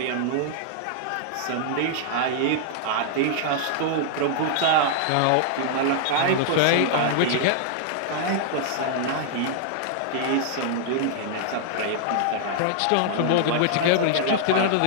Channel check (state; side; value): different; both; correlation -0.01